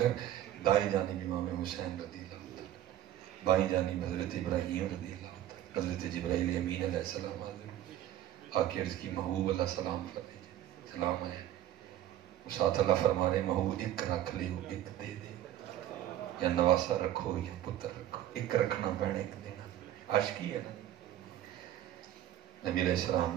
دائیں جانب امام حسین رضی اللہ عنہ, بائیں جانب حضرت ابراہیم رضی اللہ عنہ, حضرت جبرائیل امین علیہ السلام آکے عرض کی محبوب اللہ سلام فرمائیے, سلام ہے. ساتھ اللہ فرما رہے محبوب ایک رکھ لے ایک دے دے, یا نواسا رکھو یا پتر رکھو, ایک رکھنا پینا ایک دینا. عاشقی ہے نا. نبی علیہ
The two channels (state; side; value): quieter; left; 12.3 dB